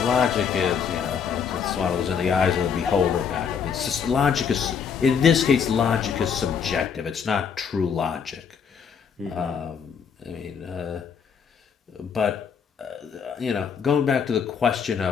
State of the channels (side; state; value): right; quieter; 6.8 dB